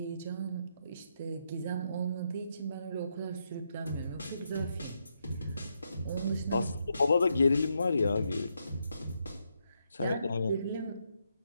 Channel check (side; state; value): both; inverted; correlation -0.80